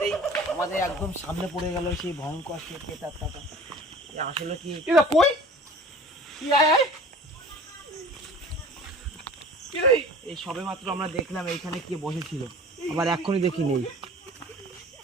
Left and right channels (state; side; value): normal; both; correlation 0.44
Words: আমাদের একদম সামনে পড়ে গেল সেই ভয়ঙ্কর সে পেটারটা। আসলে কি কই এই সবে মাত্র আমরা দেখলাম এইখানে কে বসেছিল, আবার এখনই দেখি নেই।